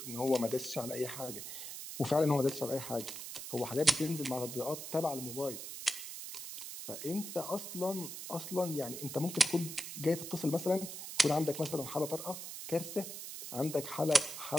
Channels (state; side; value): noise; right; hiss, 8 dB below the sound